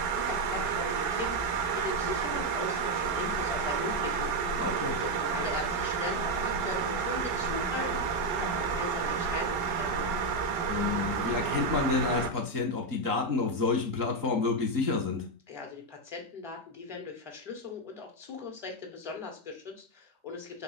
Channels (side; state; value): left; late; 4.0 ms